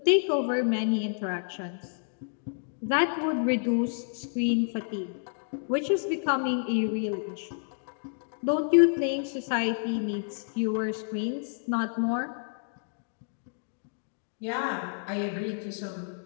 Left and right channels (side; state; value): right; silent; digital silence